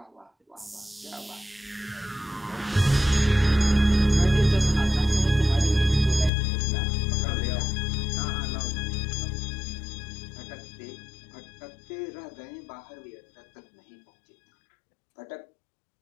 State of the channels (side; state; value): right; drops out; at 6.3 s